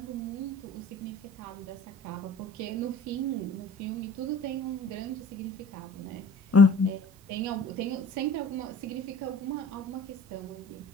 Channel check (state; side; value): normal; both; correlation 0.46